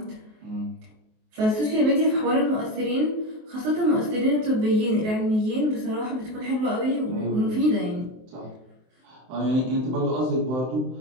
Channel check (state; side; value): late; left; 23 ms